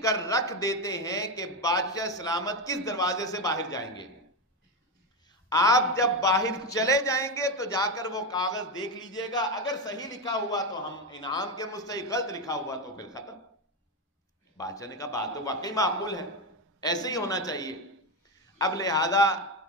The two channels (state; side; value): normal; both; correlation 0.12